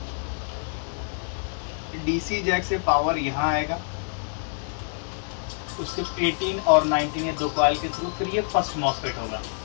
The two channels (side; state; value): right; silent; 61 dB below the other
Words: डीसी जैक से पावर यहाँ आएगा, उसके 18 और 19 ये दो कॉइल के थ्रू फिर ये फर्स्ट मॉसफेट होगा,